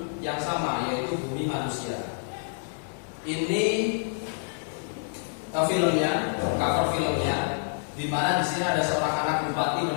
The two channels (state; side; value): silent; right; digital silence